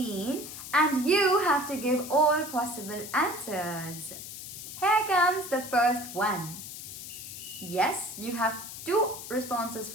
and you have to give all possible answers. Here comes the first one. Yes, you have two responses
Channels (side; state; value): left; noise; hiss, 10 dB below the sound